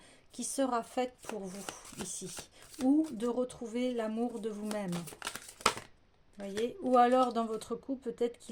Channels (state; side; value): identical; both; correlation 1.00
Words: qui sera faite pour vous ici, ou de retrouver l'amour de vous-même. Voyez, ou alors dans votre couple, peut-être